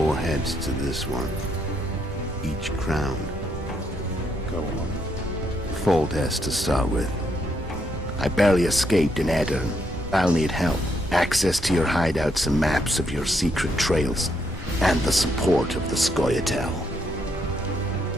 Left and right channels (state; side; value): normal; both; correlation 0.76